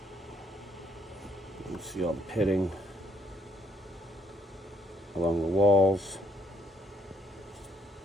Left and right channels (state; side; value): normal; both; correlation 0.69